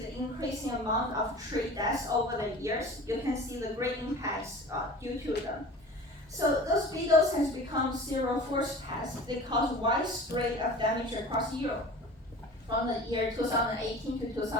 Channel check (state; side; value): normal; both; correlation 0.39